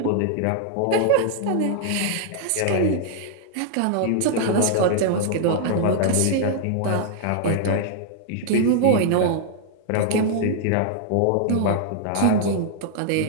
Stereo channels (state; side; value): different; both; correlation -0.01